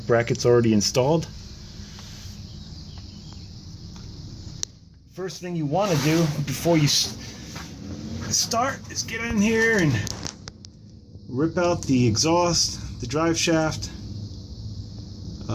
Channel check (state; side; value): identical; both; correlation 1.00